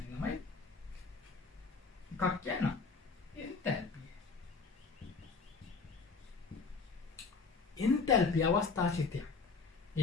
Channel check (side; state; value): right; quieter; 4.6 dB